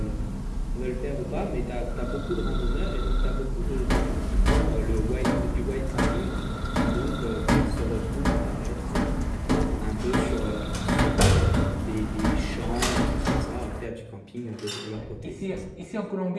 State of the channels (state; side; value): identical; both; correlation 1.00